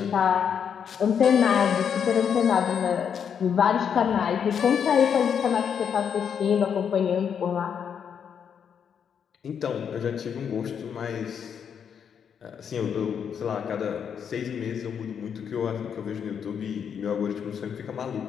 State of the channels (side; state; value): right; quieter; 7.6 dB